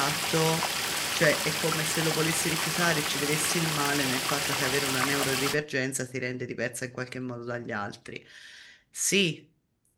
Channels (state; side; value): identical; both; correlation 1.00